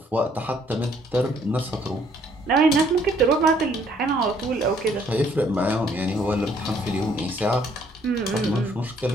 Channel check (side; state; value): both; normal; correlation 0.64